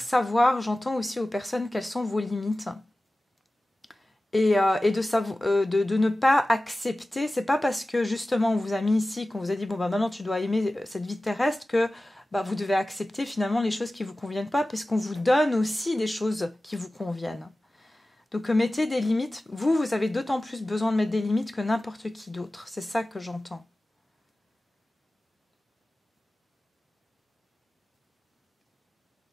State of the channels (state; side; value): normal; both; correlation 0.96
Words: savoir, j'entends aussi aux personnes, quelles sont vos limites. Et de ne pas accepter, c'est pas parce que justement on vous a mis ici, qu'on vous a dit bon bah maintenant tu dois aimer cette vie terrestre que bah, vous devez accepter finalement les choses qui vous conviennent pas, parce qu'on vous donne aussi des choses qui vous conviennent. Donc mettez des limites, vous avez d'autant plus besoin de mettre des limites que n'importe qui d'autre, c'est ça que j'entends.